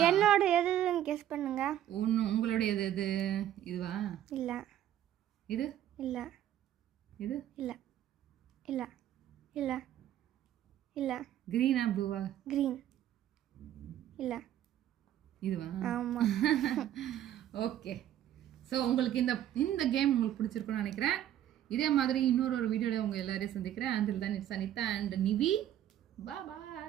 என்னோட எதுன்னு கெஸ் பண்ணுங்க. உங்களுடைய எது? இதுவா? இல்லை. இது? இல்லை. இது? இல்லை. இல்லை. இல்லை. இல்லை. கிரீனா ப்ளூவா? கிரீன். இல்லை. இதுவா? ஆமாம். ஓகே, ஸோ உங்களுக்கு இந்த கேம் உங்களுக்கு பிடிச்சிருக்குன்னு நினைக்கிறேன். இதே மாதிரி இன்னொரு வீடியோவில் உங்கள் எல்லாரையும் சந்திக்கிறேன். until then it's Anita and Nivi. Bye bye.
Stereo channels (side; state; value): left; quieter; 11.7 dB